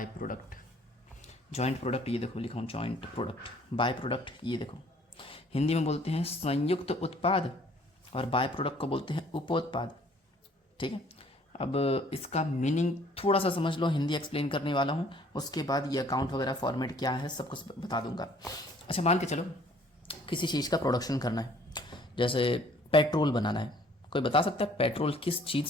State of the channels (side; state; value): both; normal; correlation 0.57